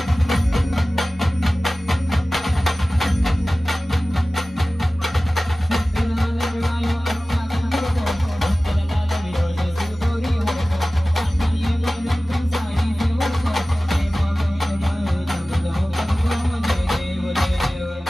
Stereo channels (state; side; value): normal; both; correlation 0.97